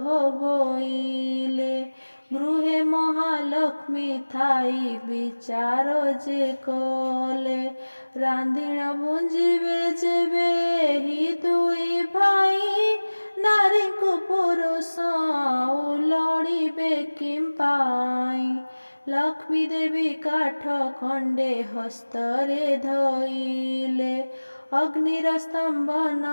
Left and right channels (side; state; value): both; inverted; correlation -1.00